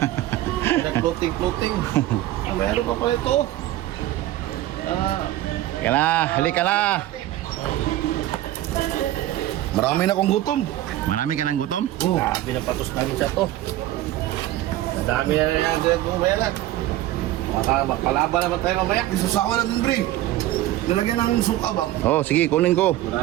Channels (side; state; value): left; quieter; 14.7 dB